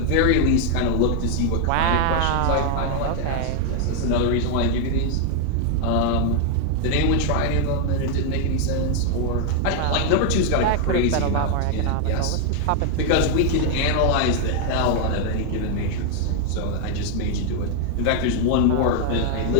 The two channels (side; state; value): both; different; correlation 0.00